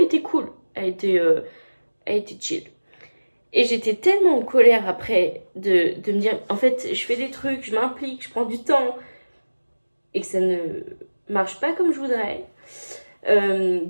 était cool. Elle était chill. Et j'étais tellement en colère après de me dire, en fait, je fais des trucs, je m'implique, je prends du temps. Et que ça ne marche pas comme je voudrais.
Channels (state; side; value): inverted; both; correlation -1.00